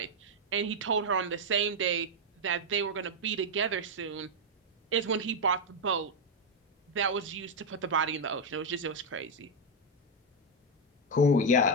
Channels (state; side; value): normal; both; correlation 0.02